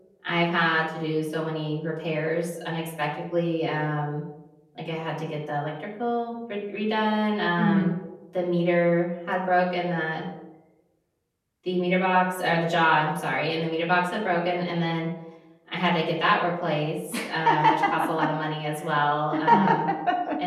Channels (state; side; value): identical; both; correlation 1.00